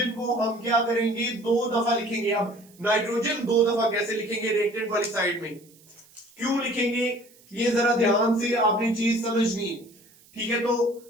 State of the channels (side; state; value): right; noise; hiss, 27 dB below the sound